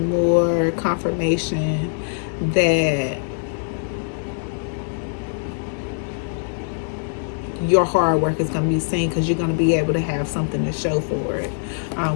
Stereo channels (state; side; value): silent; right; 64 dB below the other